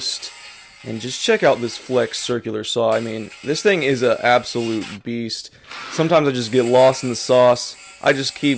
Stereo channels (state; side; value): identical; both; correlation 1.00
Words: And just check out this flex circular saw. I mean, this thing is an absolute beast. Sometimes I just get lost in the sauce. I just